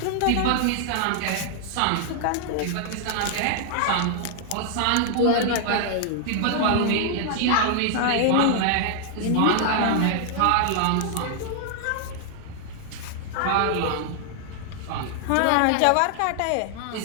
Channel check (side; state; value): both; different; correlation 0.00